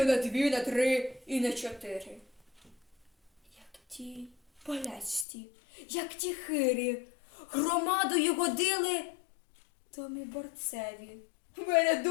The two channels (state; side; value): drops out; right; at 5.2 s